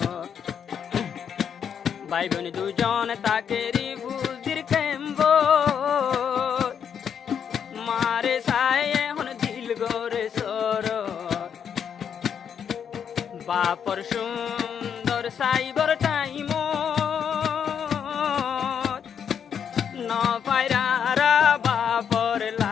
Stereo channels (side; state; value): right; quieter; 7.8 dB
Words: ভাই বোন দুজন তাকে রিফুজির ক্যাম্প মারে সাই এখন দিল গোরে সর বাপর সুন্দর সাইবর টাইম ন পায়রা বাপর